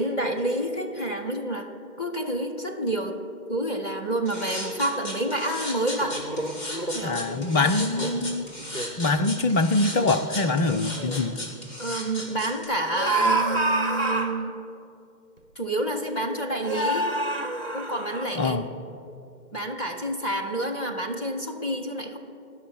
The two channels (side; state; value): right; late; 2.1 ms